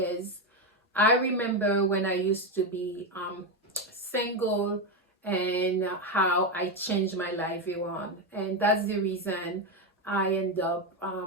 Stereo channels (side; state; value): both; normal; correlation 0.09